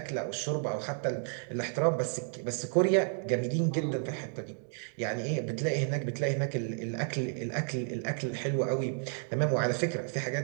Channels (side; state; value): left; silent; 57 dB below the other